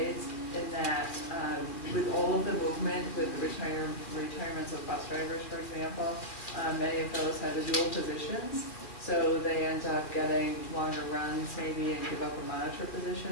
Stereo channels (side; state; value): right; late; 2.4 ms